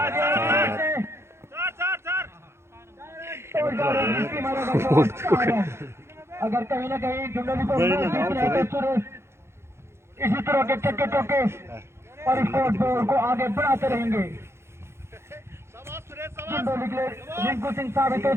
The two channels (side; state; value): left; late; 0.13 ms